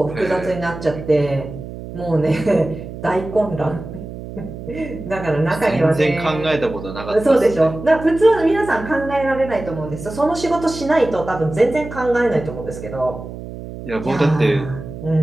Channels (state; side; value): noise; right; hum, 11 dB below the sound